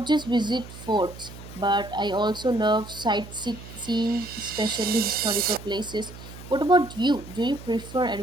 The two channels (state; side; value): noise; right; hum, 15 dB below the sound